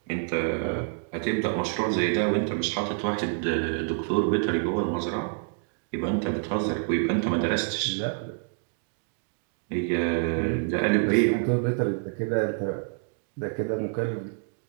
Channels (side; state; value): left; silent; 58 dB below the other